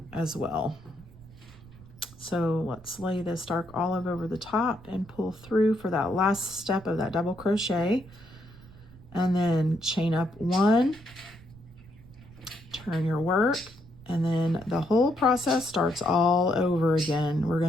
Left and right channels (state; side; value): noise; right; rumble, 21 dB below the sound